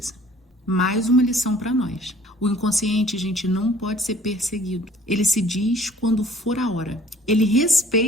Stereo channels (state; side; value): normal; both; correlation 0.54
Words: Mais uma lição para nós. O inconsciente, gente, não pode ser perseguido. Ele se diz quando for a hora. Ele